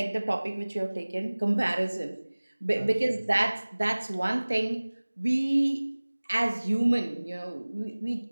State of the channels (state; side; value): inverted; both; correlation -1.00